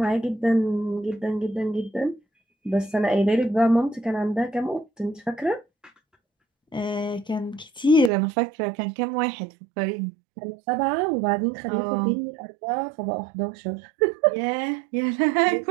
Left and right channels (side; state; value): left; drops out; at 8.1 s